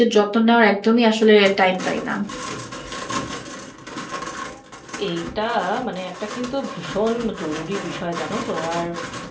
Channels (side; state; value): both; identical; correlation 1.00